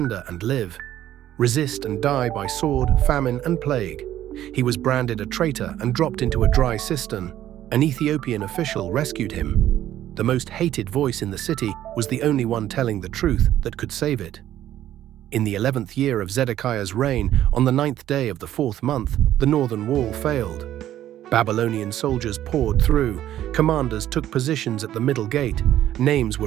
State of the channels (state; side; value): quieter; left; 12.4 dB